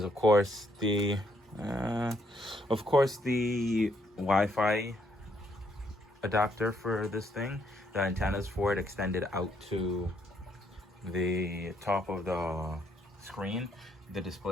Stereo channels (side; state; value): both; normal; correlation 0.72